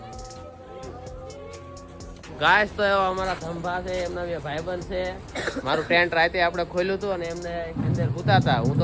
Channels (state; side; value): identical; both; correlation 1.00